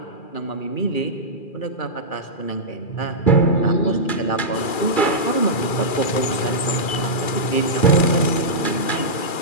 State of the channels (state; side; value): late; right; 2.4 ms